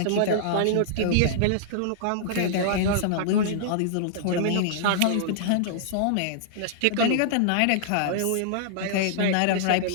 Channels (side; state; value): both; different; correlation -0.01